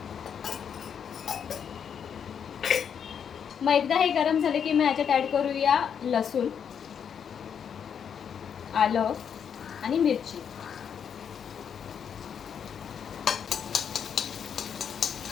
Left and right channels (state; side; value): quieter; right; 7.7 dB